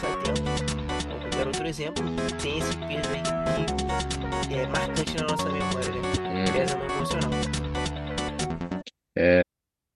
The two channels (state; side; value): identical; both; correlation 1.00